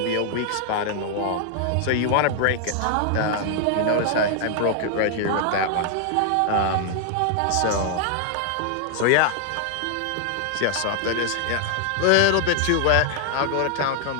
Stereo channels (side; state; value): both; different; correlation 0.00